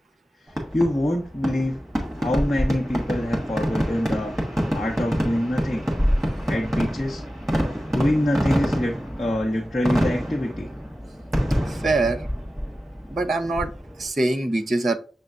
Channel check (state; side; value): normal; both; correlation 0.93